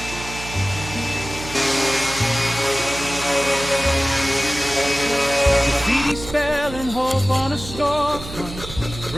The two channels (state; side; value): noise; right; hum, 12 dB below the sound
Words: Graffiti spelling hope on a storefront,